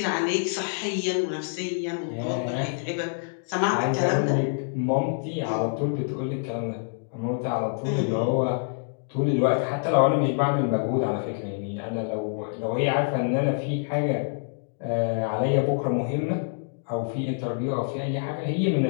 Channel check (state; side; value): silent; right; digital silence